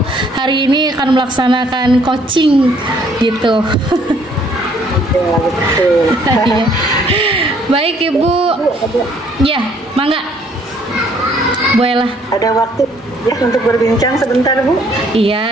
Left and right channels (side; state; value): both; normal; correlation 0.63